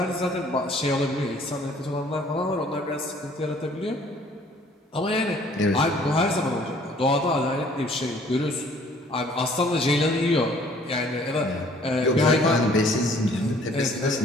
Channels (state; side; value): normal; both; correlation 0.57